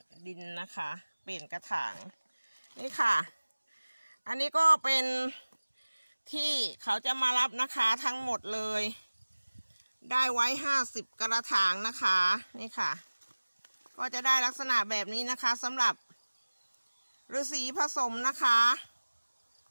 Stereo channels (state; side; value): inverted; both; correlation -1.00